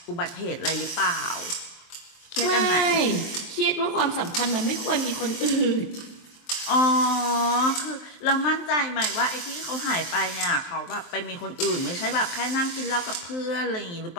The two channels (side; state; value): right; late; 23 ms